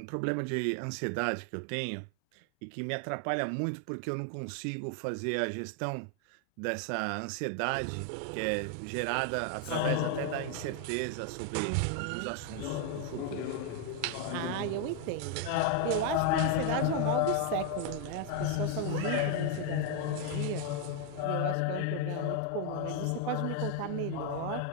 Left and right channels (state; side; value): different; both; correlation 0.01